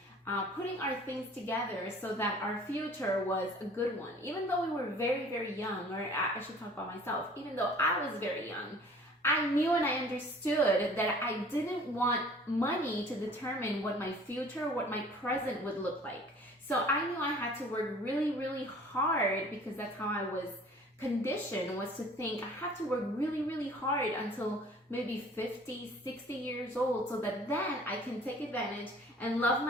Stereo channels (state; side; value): normal; both; correlation 0.50